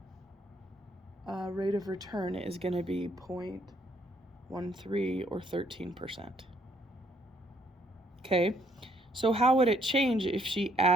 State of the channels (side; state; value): both; normal; correlation 0.68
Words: rate of return is going to be 0.13 or 13%. Okay, so how would it change if she